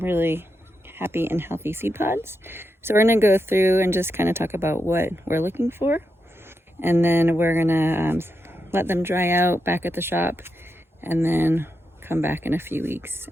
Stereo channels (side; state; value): both; normal; correlation 0.86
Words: happy and healthy seed pods. So we're going to go through and just kind of talk about what we're looking for. And then we're going to let them dry out back at the shop and then come back in a few weeks